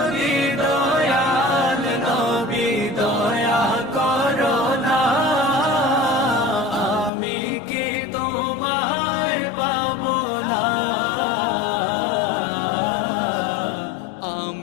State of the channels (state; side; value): drops out; right; at 7.1 s